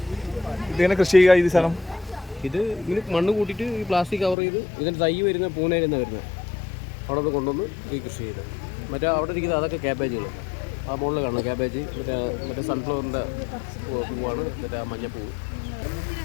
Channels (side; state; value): right; drops out; at 4.4 s